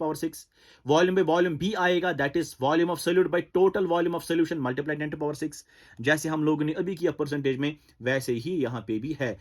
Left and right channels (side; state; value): both; identical; correlation 1.00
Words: power 6. volume by volume भी आएगा, that is volume of solute by total volume of solution multiply 10 to power 6. जैसे हम लोगों ने अभी किया परसेंटेज में, वैसे ही यहाँ पे भी है,